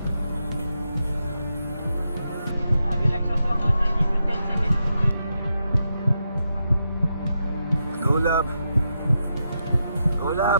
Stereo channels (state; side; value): inverted; both; correlation -0.85